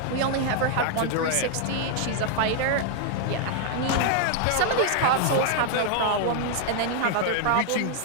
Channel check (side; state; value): both; different; correlation 0.00